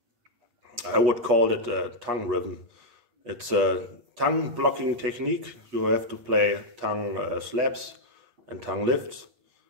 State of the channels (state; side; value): late; left; 8.3 ms